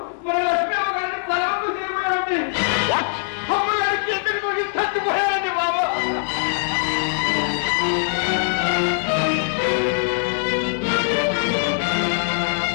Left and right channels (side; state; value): right; silent; digital silence